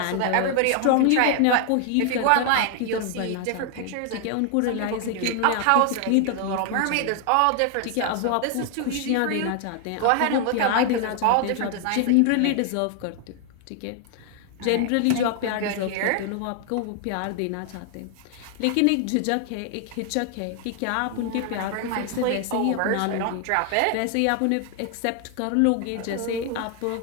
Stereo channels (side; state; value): both; different; correlation 0.00